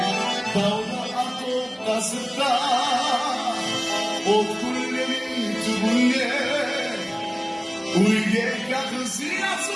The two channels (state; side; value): identical; both; correlation 1.00